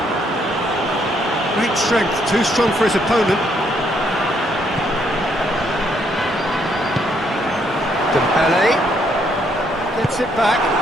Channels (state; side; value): normal; both; correlation 0.71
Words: Great strength, too strong for his opponent. Dembele gets it back.